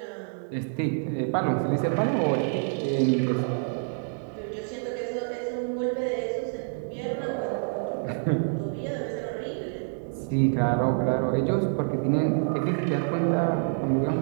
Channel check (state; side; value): silent; left; digital silence